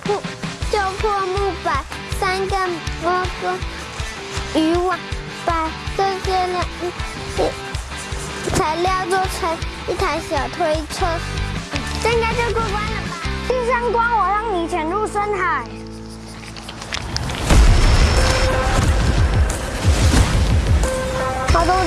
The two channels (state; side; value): identical; both; correlation 1.00